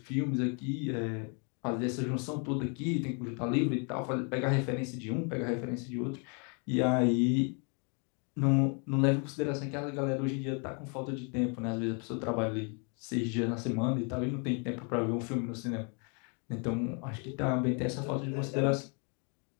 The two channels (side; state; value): right; quieter; 37.5 dB